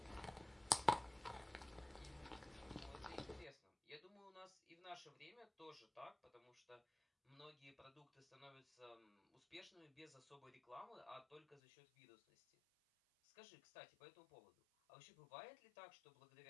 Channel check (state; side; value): drops out; right; at 11.6 s